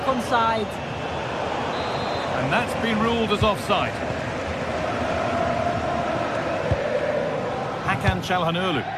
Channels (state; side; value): identical; both; correlation 1.00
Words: onside. And that's been ruled as offside. Hakan Çalhanoğlu.